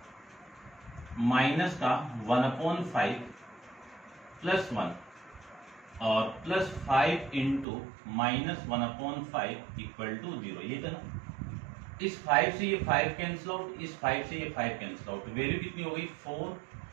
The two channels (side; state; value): left; drops out; at 7.7 s